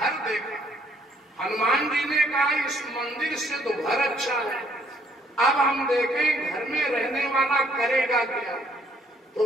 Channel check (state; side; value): normal; both; correlation 0.64